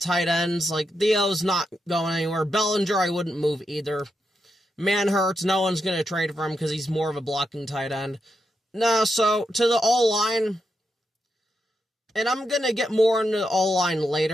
ends. Like, Theo's not going anywhere. Bellinger, I wouldn't move either. Manhurts, no one's going to trade for him because he's more of a blocking tight end. No, so to the O-line, and I'm going to get more into the O-line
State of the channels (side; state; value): both; normal; correlation 0.84